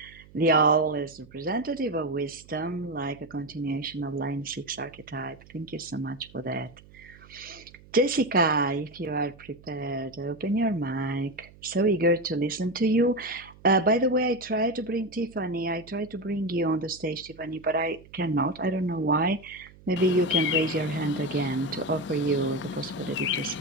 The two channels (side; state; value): right; noise; hum, 23 dB below the sound